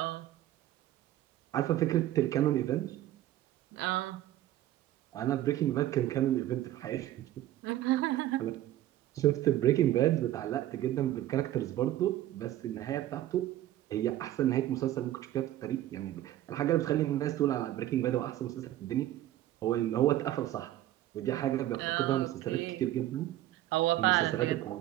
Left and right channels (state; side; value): quieter; left; 13.8 dB